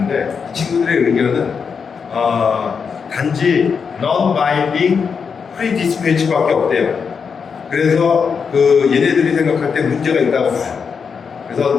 이 친구들의 의견은 단지 non-binding pre-dispatch밖에 없대요. 그래서 그 얘네들이 생각할 때 문제가 있다고 봐요.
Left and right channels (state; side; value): quieter; right; 6.0 dB